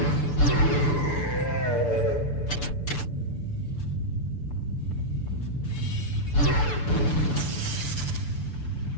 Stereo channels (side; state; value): right; late; 6.9 ms